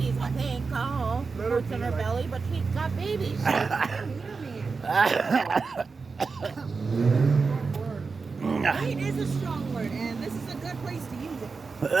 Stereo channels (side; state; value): left; quieter; 4.6 dB